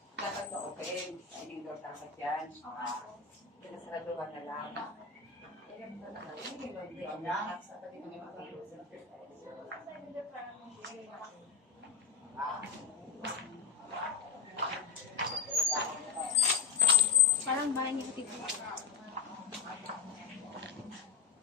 Dapat na open. Hindi daw dapat yan. Pinasaraduhan na lang. Parang bahay ni Kapit.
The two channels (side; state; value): right; quieter; 5.8 dB